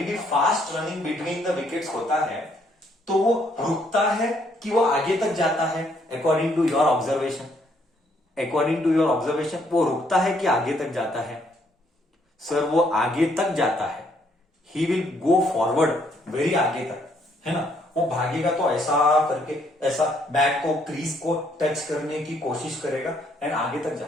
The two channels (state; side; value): normal; both; correlation 0.69